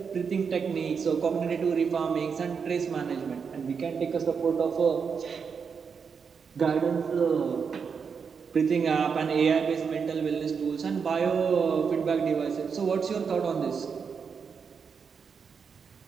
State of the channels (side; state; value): left; quieter; 6.1 dB